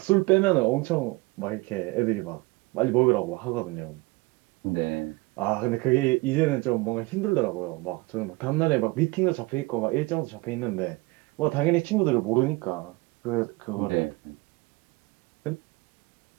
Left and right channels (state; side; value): quieter; left; 23.7 dB